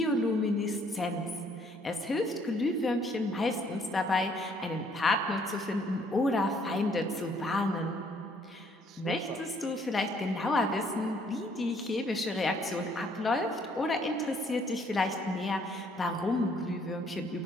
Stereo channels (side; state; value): both; normal; correlation 0.64